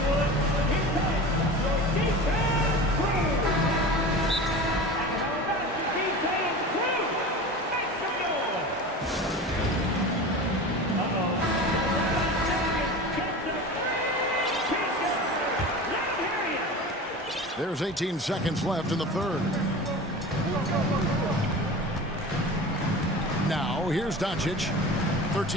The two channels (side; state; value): both; normal; correlation 0.33